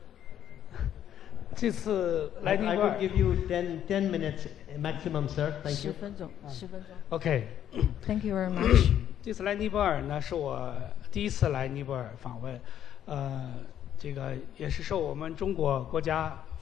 这次来尼泊 I 尔 will give you 10 minutes maximum, sir. Thank you. 10分钟，10分钟。 ，OK。 Thank you very much. 这次来尼泊尔呢，是我第一次来尼泊尔访问，这个也是受我们中国国家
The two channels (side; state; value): right; quieter; 10.4 dB